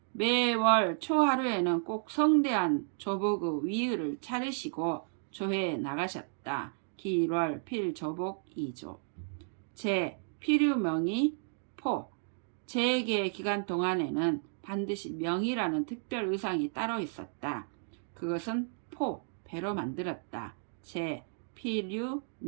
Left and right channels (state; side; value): silent; left; 56 dB below the other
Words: 매월 초하루에는 꼭 성대한 조복의 위의를 차리시고 조회에 나가셨다. 길월 필조복 2조. 제 필유명의 포. 제계 기간 동안에는 반드시 명이라는 특별 의상이 따로 있었다. 그것은 포, 배로 만들었다. 제